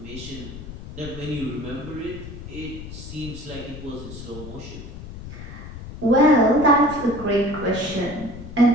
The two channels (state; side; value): noise; left; rumble, 12 dB below the sound